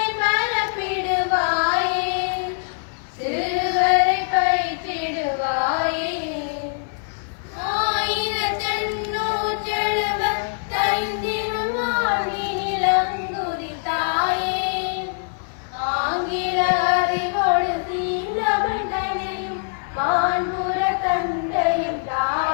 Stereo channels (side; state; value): right; silent; 57 dB below the other